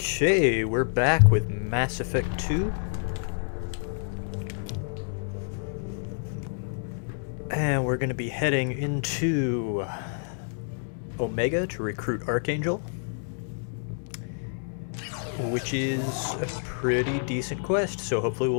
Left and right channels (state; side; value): silent; right; 59 dB below the other